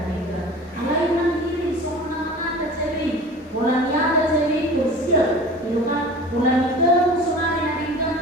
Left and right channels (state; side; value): normal; both; correlation 0.39